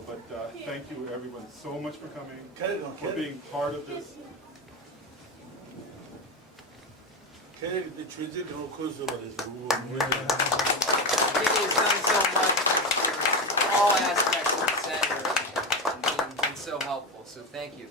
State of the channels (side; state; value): both; normal; correlation 0.18